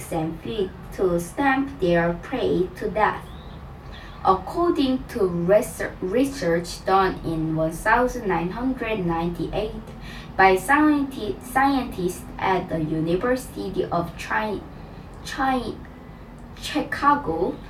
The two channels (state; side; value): identical; both; correlation 1.00